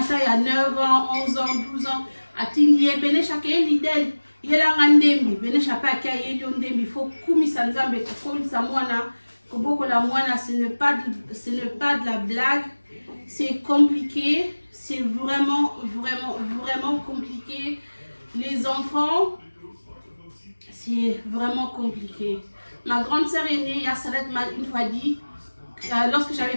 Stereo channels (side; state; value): both; inverted; correlation -1.00